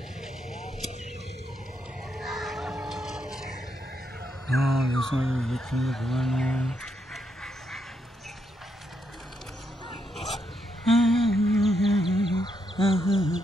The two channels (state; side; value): normal; both; correlation 0.79